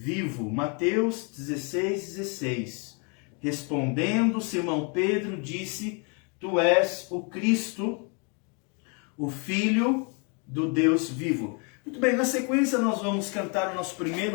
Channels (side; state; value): right; quieter; 35.5 dB